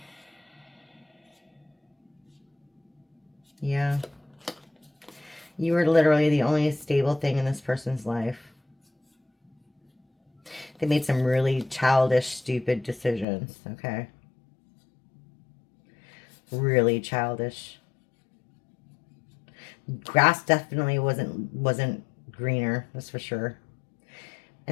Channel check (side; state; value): right; drops out; at 13.2 s